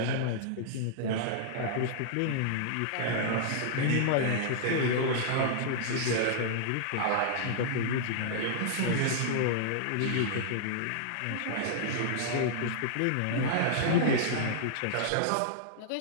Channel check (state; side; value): different; both; correlation -0.01